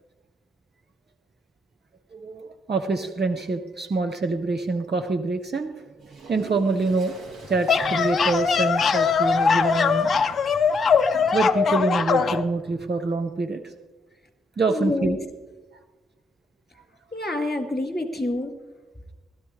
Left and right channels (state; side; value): normal; both; correlation 0.73